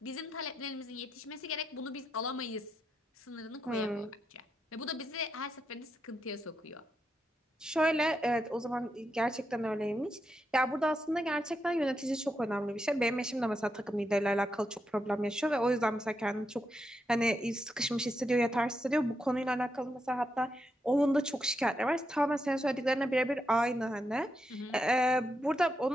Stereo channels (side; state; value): both; normal; correlation 0.83